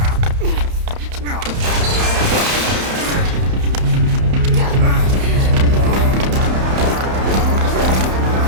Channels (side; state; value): left; late; 31 ms